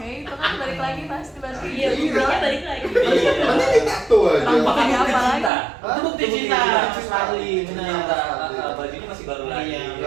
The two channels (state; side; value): drops out; left; at 5.5 s